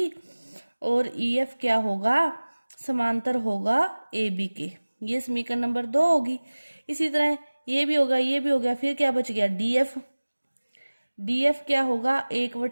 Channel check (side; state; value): both; inverted; correlation -1.00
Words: और EF क्या होगा, समांतर होगा AB के। ये समीकरण नंबर 2 होगी। इसी तरह ये भी होगा, ये भी हो गया। फिर क्या बच गया, DF क्या होगा,